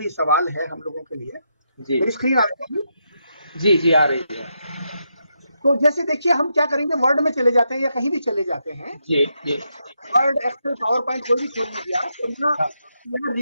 सवाल है हम लोगों के लिए। जी मेरी स्क्रीन आ रही है? जी जी आ रही है। तो जैसे देखिए हम क्या करेंगे, वर्ड में चले जाते हैं या कहीं भी चले जाते हैं, जी जी वर्ड, एक्सेल, पावर पॉइंट कोई भी खोल लीजिए आप, और यहाँ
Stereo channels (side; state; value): both; inverted; correlation -0.82